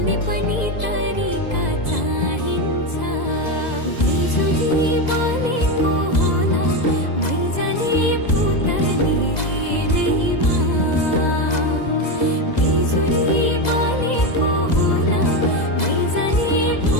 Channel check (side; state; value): right; late; 2.0 ms